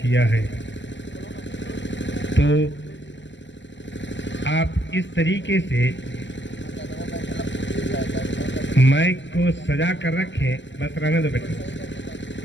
किया है। तो आप इस तरीके से माइक को सजा कर रखें, बस रहने दो बेटा,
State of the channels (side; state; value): right; late; 0.54 ms